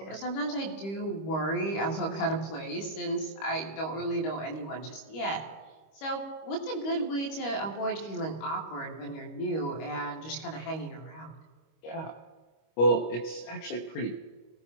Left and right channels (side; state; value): right; late; 25 ms